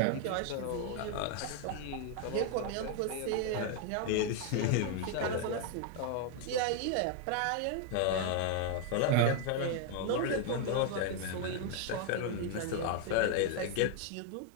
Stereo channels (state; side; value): different; both; correlation 0.00